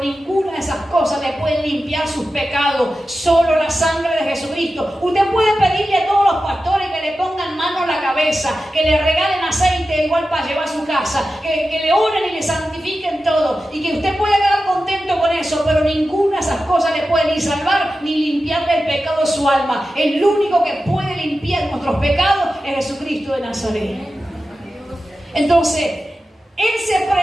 de esas cosas le puede limpiar sus pecados. Solo la sangre de Jesucristo. Usted puede pedirle a todos los pastores que le pongan mano a la cabeza, que le regalen aceite igual para llevar a su casa, que le oren y le santifiquen todo, y que usted pueda quedar contento con eso, pero ninguna de esas cosas le puede ni salvar ni limpiarle el pecado de su alma. El único que puede limpiar nuestros pecados es Jesucristo de Nazaret. Entonces, Él se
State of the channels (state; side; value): normal; both; correlation 0.93